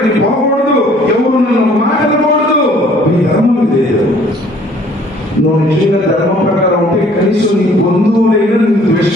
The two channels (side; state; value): both; normal; correlation 0.57